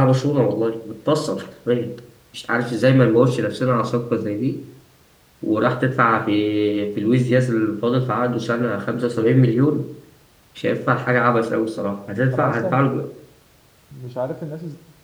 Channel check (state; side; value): identical; both; correlation 1.00